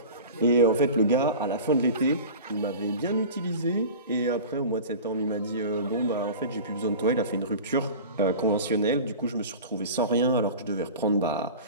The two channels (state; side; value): inverted; both; correlation -0.35